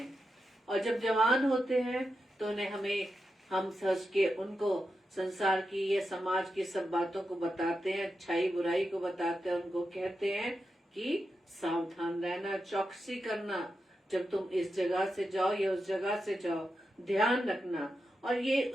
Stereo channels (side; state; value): both; normal; correlation 0.88